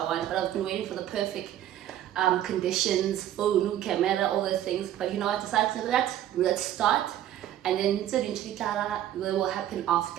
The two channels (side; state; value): left; quieter; 11.8 dB